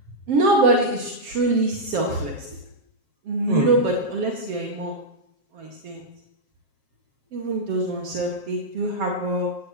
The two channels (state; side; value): late; left; 7.5 ms